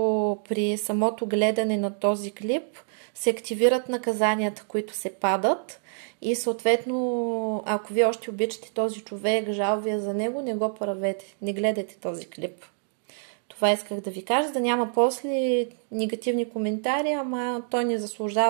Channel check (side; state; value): left; silent; 61 dB below the other